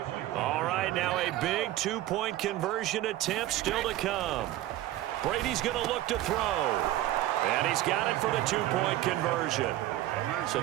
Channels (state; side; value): quieter; left; 14.8 dB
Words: All right, now a big 2-point conversion attempt still to come. Brady's going to look to throw. And he's got it for the 2-point conversion. So